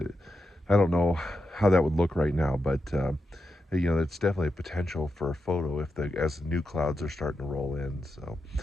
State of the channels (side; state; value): both; normal; correlation 0.87